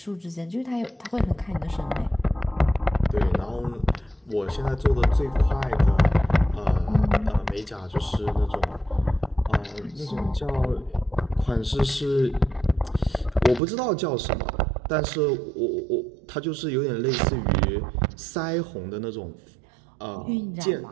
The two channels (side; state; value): left; drops out; at 13.6 s